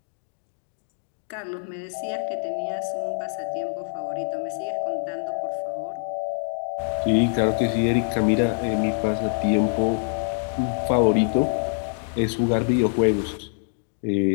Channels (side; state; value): right; silent; digital silence